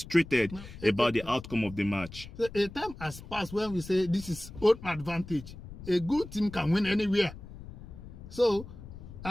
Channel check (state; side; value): noise; left; rumble, 14 dB below the sound